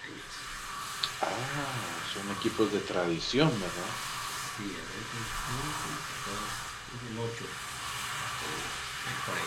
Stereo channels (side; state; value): both; identical; correlation 1.00